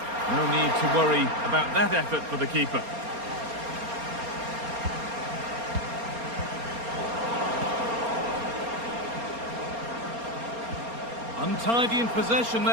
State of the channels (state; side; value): late; left; 4.3 ms